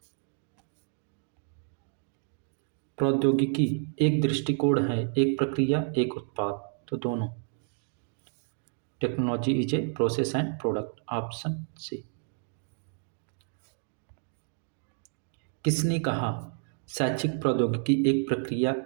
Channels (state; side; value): silent; left; 56 dB below the other